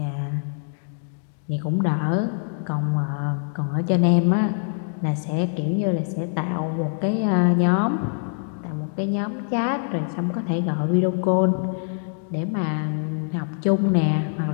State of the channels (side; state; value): right; silent; digital silence